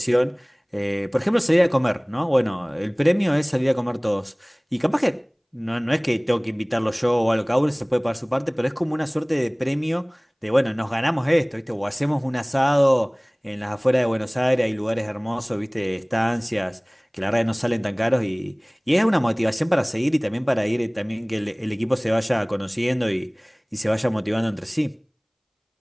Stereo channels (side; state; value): both; identical; correlation 1.00